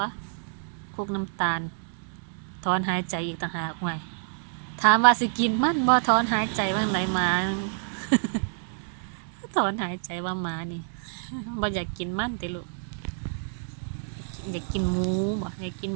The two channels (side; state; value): left; silent; digital silence